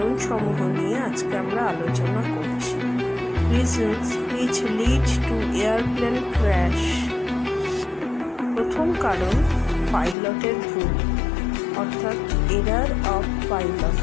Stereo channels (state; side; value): drops out; right; at 10.2 s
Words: নিয়ে আজকে আমরা আলোচনা করছি। Reasons which lead to airplane crash। প্রথম কারণ পাইলটের ভুল, অর্থাৎ error of pilot.